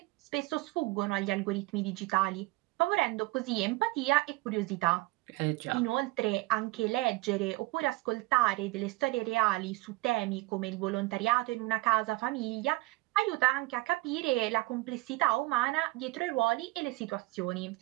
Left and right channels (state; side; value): quieter; left; 21.0 dB